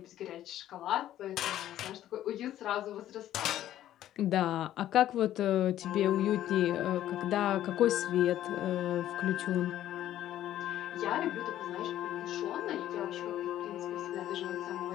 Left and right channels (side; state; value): right; quieter; 12.5 dB